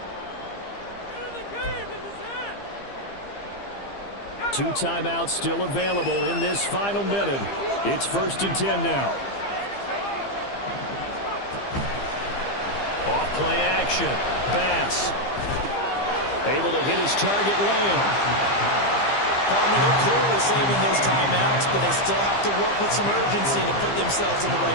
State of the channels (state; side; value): late; right; 15 ms